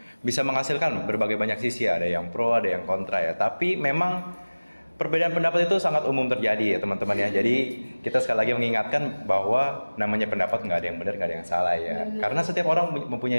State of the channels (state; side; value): inverted; both; correlation -1.00